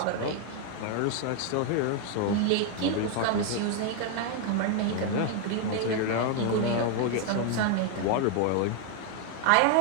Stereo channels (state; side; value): different; both; correlation 0.00